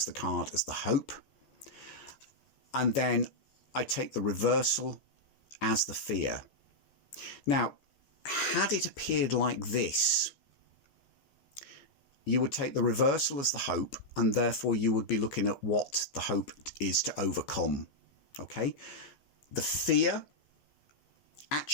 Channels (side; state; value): right; late; 14 ms